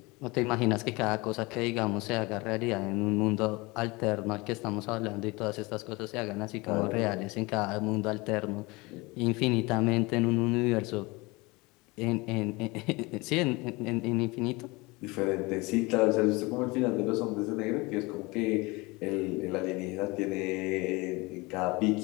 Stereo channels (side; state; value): right; quieter; 24.2 dB